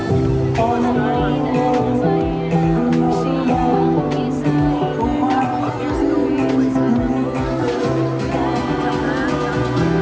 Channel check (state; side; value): identical; both; correlation 1.00